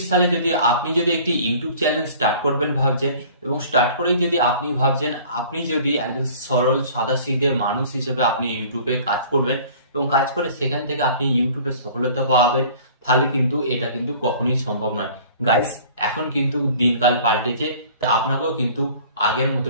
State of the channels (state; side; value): inverted; both; correlation -0.48